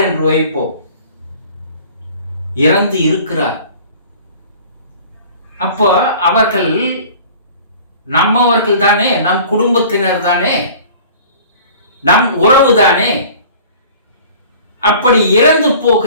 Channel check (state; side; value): inverted; both; correlation -0.46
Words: என்று வைப்போம். இறந்து இருக்கிறார். அப்போ அவர்கள் நம்மவர்கள் தானே, நம் குடும்பத்தினர் தானே, நம் உறவு தானே. அப்படி இறந்து